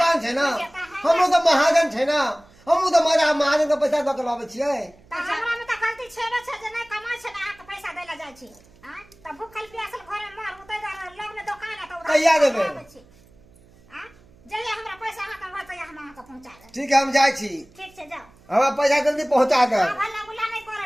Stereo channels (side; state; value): right; noise; hum, 27 dB below the sound